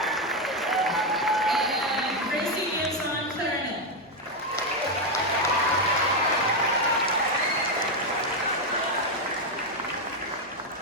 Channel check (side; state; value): both; normal; correlation 0.05